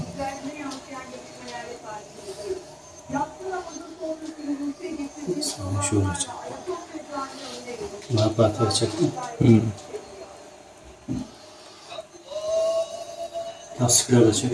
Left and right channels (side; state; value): both; identical; correlation 1.00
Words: Sana şöyle çek. Napatı çek. Lastikleri de çek.